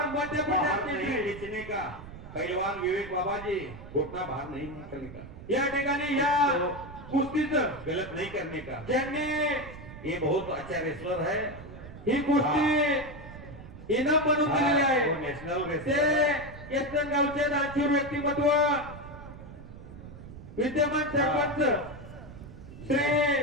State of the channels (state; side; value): noise; right; rumble, 14 dB below the sound